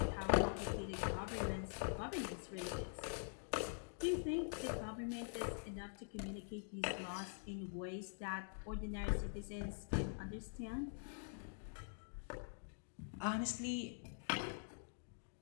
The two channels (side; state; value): right; silent; digital silence